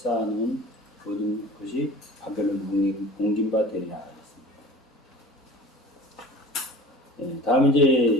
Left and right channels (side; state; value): both; normal; correlation 0.40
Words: 모든 것이 바벨론 공긴바 되리라 했습니다. 다음